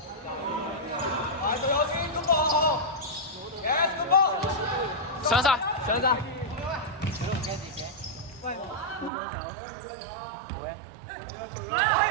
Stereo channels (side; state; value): left; drops out; at 9.1 s